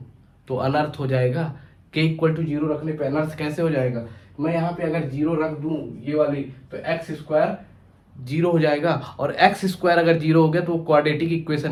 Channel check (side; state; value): both; identical; correlation 1.00